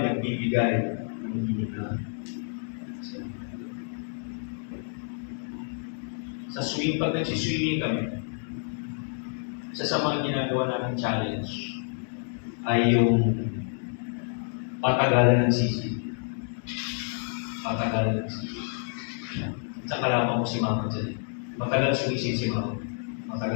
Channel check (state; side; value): silent; right; 59 dB below the other